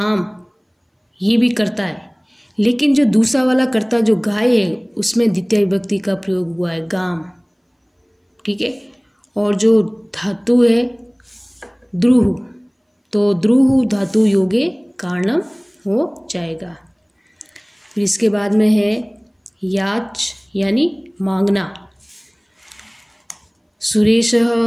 ये भी करता है, लेकिन जो दूसरा वाला कर्ता जो गाय है उसमें द्वितीय विभक्ति का प्रयोग हुआ है, गाम। ठीक है। और जो धातु है द्रुह, तो द्रुह धातु योगे कारणम हो जाएगा। फिर इसके बाद में है याच, यानी मांगना। सुरेशः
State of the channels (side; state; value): both; identical; correlation 1.00